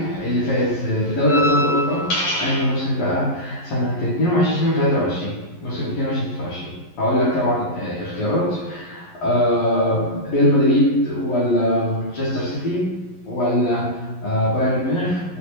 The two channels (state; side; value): late; right; 11 ms